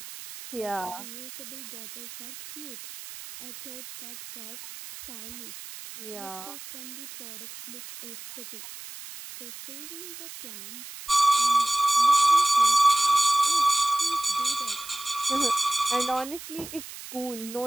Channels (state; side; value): noise; right; hiss, 13 dB below the sound